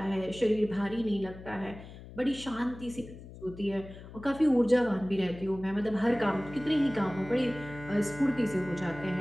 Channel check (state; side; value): noise; left; hum, 15 dB below the sound